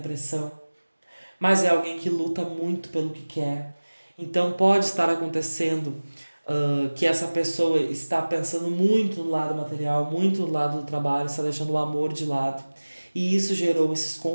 Mas é alguém que luta muito pelo que quer. Então pode estar acontecendo que essa pessoa está pensando muito no lado material, muito no lado do trabalho, está deixando o amor de lado. E isso gerou esses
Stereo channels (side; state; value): both; inverted; correlation -1.00